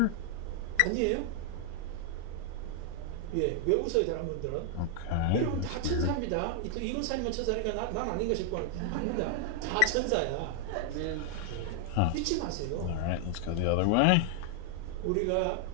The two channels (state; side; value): different; both; correlation 0.00